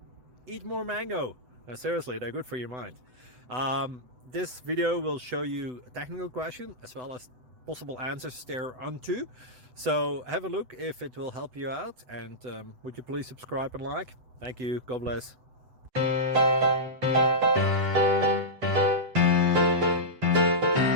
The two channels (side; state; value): left; late; 8.0 ms